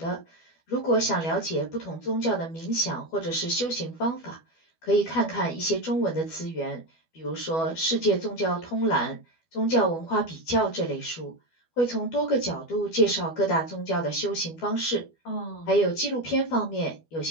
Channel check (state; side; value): late; right; 12 ms